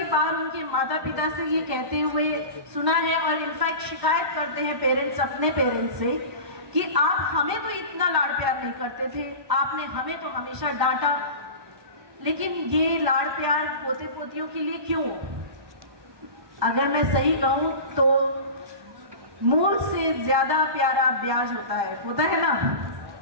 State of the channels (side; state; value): left; late; 1.2 ms